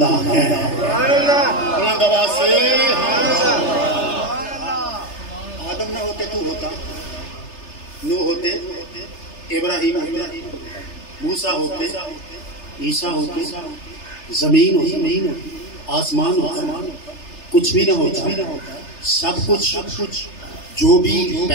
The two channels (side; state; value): right; late; 3.3 ms